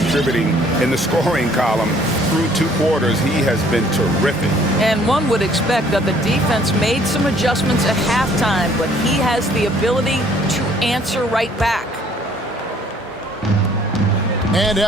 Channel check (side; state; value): both; normal; correlation 0.59